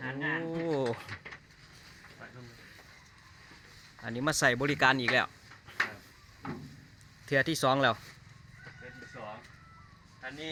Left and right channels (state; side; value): identical; both; correlation 1.00